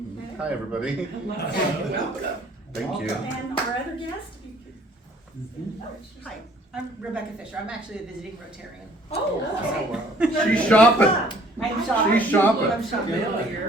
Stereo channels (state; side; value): normal; both; correlation 0.57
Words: Hi, everybody. Welcome. Thank you. And our other guest, if you could. Hi, I'm Rebecca Fisher. I'm actually a visiting Rotarian. Oh, okay. She's shopping. I'm shopping. She's shopping. I'm shopping.